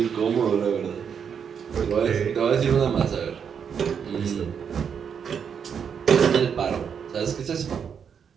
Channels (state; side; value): quieter; left; 7.2 dB